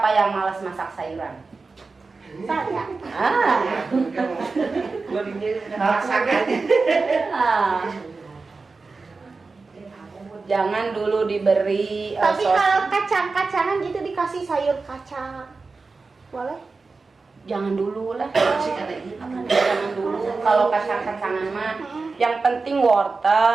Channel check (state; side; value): quieter; left; 4.1 dB